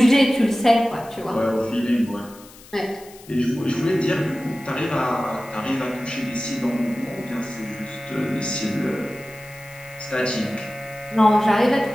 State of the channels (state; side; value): noise; left; hiss, 21 dB below the sound